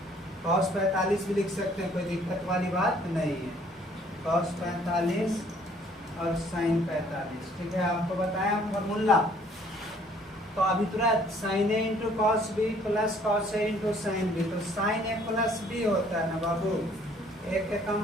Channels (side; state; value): both; normal; correlation 0.60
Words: कॉस 45 भी लिख सकते हैं, कोई दिक्कत वाली बात नहीं है। कॉस 45 और साइन 45, ठीक है। आपको बताया फॉर्मूला। तो अभी तुरंत sine A into cos B plus cos A into sine B, तो साइन ए प्लस बी होता है ना बाबू। ए के